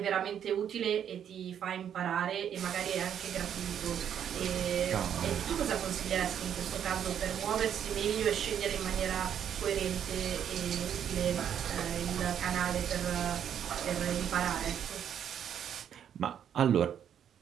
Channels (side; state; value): left; quieter; 9.1 dB